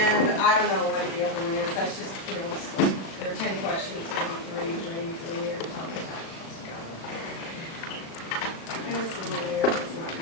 I don't know what the other one is. That's just, you know, there are 10 questions, maybe 3 or something. And it's a little weird, it's not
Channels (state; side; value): late; right; 36 ms